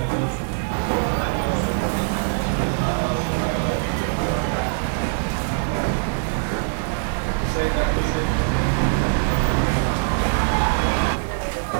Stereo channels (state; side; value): silent; left; 64 dB below the other